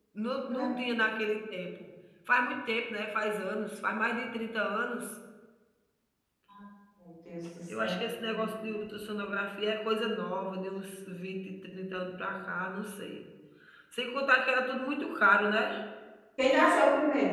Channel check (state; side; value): identical; both; correlation 1.00